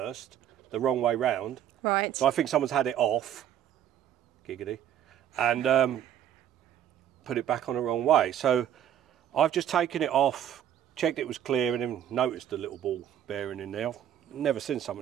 the wrong way round. Right. So I think someone's had it off, giggity, and put it back on the wrong way. So I've just taken it off, checked it was clear, and then noticed the little ball bearing in there. I've never seen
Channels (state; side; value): quieter; left; 10.4 dB